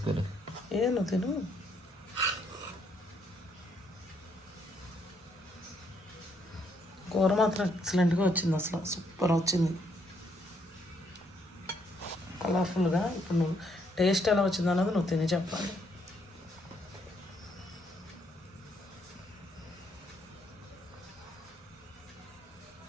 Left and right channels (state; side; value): normal; both; correlation 0.72